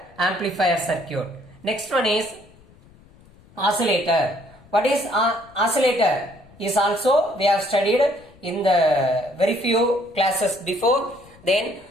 Next one is oscillator. What is oscillator? Is also we have studied in the very few classes before. Then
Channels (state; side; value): noise; left; rumble, 26 dB below the sound